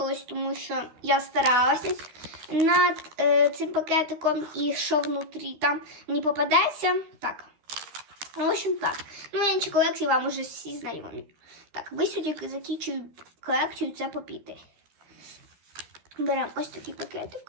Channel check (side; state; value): left; late; 12 ms